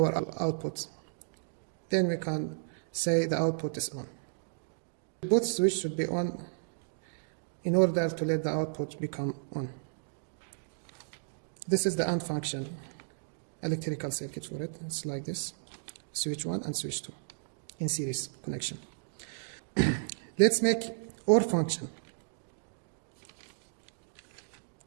output. Then we can say the output is on. Both switches should be on in order to let the output become on. This is the AND function, electrical circuit for it. It's like this, switch 1 and switch 2 in series connection. Let's make OR function.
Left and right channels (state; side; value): silent; left; digital silence